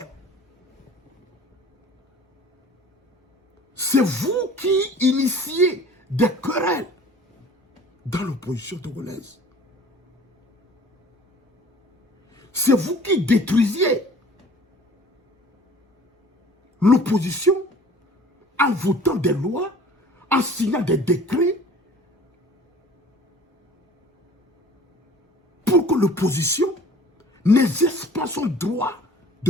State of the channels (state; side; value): normal; both; correlation 0.47